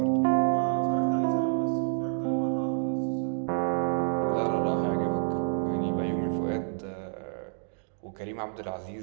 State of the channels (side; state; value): left; silent; digital silence